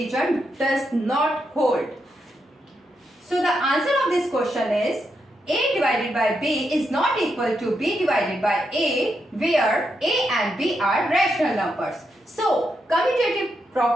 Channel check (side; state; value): both; normal; correlation 0.83